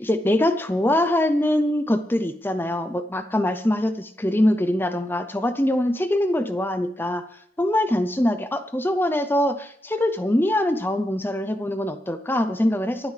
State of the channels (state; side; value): normal; both; correlation 0.85